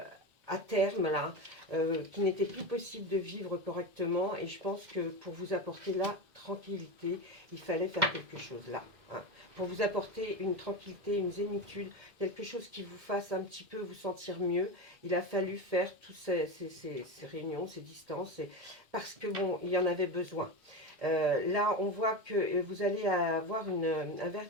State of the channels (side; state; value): left; late; 2.1 ms